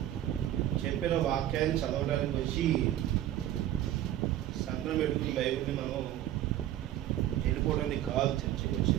చెప్పిన వాక్యాన్ని చదవడానికి వచ్చి సంఘం పెట్టుకుని బైబిల్ని మనం వెళ్ళిపోవడానికి కాదు చర్చకి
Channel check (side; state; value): left; quieter; 12.7 dB